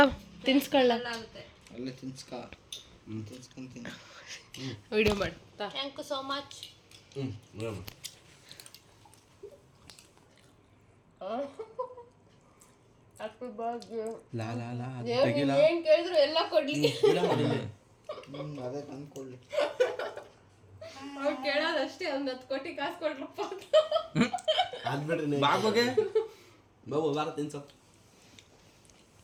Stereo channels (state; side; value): identical; both; correlation 1.00